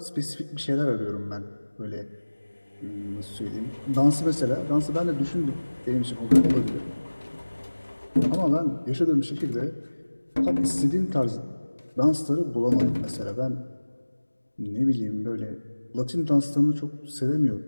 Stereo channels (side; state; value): both; inverted; correlation -1.00